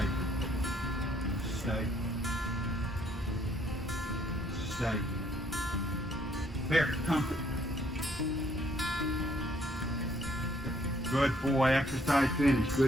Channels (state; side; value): normal; both; correlation 0.67